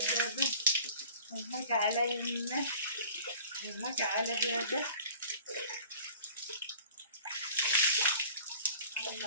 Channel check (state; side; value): inverted; both; correlation -0.46